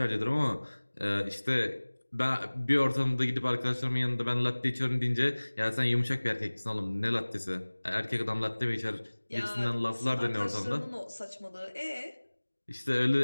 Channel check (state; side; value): inverted; both; correlation -1.00